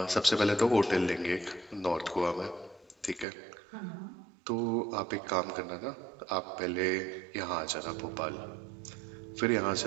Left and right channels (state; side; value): drops out; left; at 3.2 s